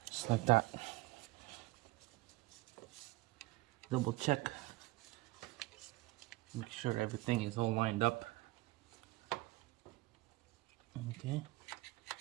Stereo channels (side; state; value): left; quieter; 20.3 dB